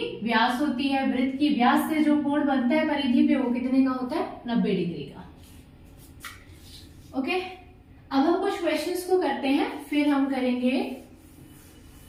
व्यास होती है। वृत्त की व्यास से जो कोण बनता है परिधि पे वो कितने का होता है 90 डिग्री का। ओके, अब हम कुछ क्वेश्चंस को करते हैं, फिर हम करेंगे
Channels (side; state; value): both; identical; correlation 1.00